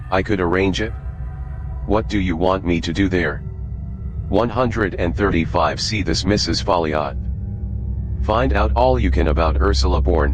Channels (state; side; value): identical; both; correlation 1.00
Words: I could arrange it. What do you want me to do there? 135. See this Mrs. Folliot. Find out all you can about Ursula